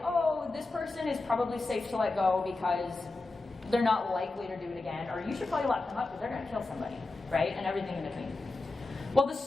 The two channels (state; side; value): quieter; right; 3.3 dB